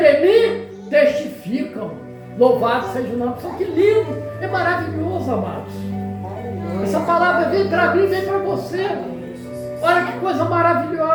mim testificam. Louvado seja o nome do Senhor. Que lindo, é maravilhoso, amados. Essa palavra vem para mim, vem para você. Olha que coisa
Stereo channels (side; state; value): both; identical; correlation 1.00